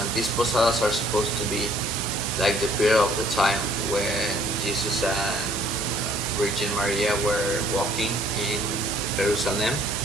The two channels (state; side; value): normal; both; correlation 0.61